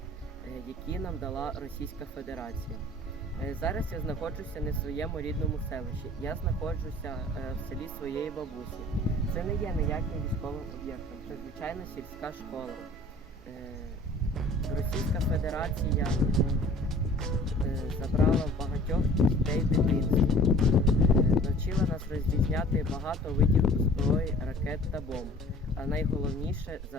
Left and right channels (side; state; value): both; normal; correlation 0.49